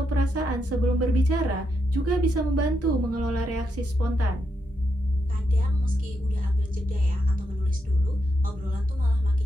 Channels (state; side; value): normal; both; correlation 0.82